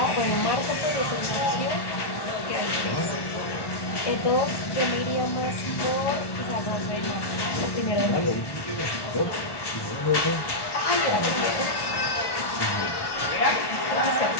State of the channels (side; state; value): right; late; 1.1 ms